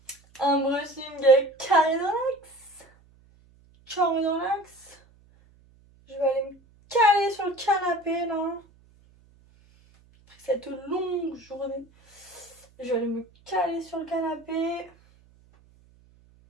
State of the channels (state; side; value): noise; right; hum, 29 dB below the sound